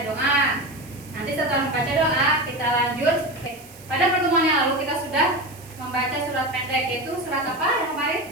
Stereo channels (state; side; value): noise; right; hiss, 21 dB below the sound